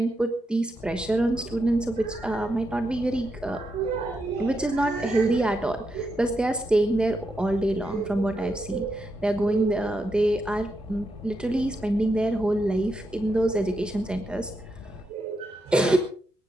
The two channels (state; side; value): normal; both; correlation 0.84